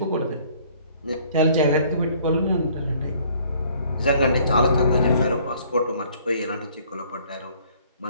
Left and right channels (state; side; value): inverted; both; correlation -0.59